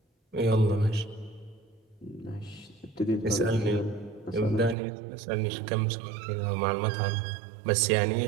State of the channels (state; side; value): drops out; left; at 4.8 s